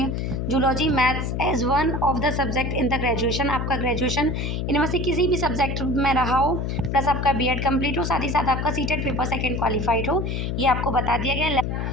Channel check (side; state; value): left; noise; hum, 1 dB below the sound